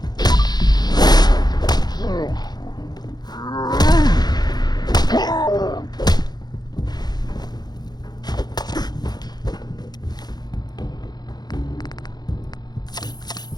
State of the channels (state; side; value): late; right; 0.20 ms